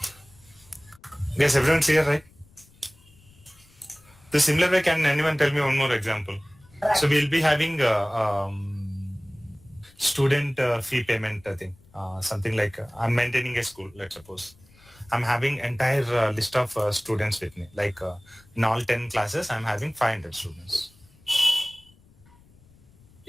Yes, everyone clear, right? The similar way, can anyone tell me one more example? So we'll be having student fee payment thing. Something like I'm maintaining a school, let's suppose. I'm having entire list of students with me. Like in all 10 classes, I'm having 500 students.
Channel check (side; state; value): left; noise; rumble, 28 dB below the sound